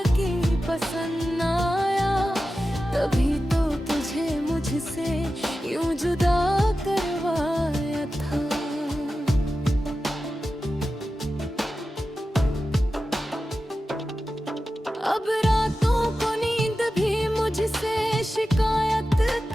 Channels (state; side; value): normal; both; correlation 0.93